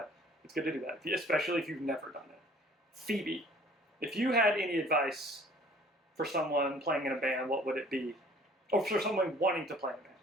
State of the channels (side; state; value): both; normal; correlation 0.53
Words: Especially if you've never done it. Phoebe, if you had any advice for someone playing in a band, what would it be? Or for someone wanting to play in a band,